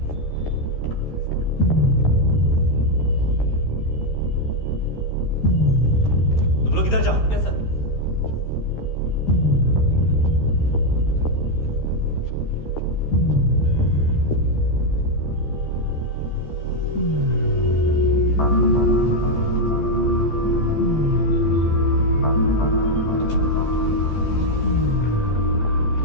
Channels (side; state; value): right; late; 13 ms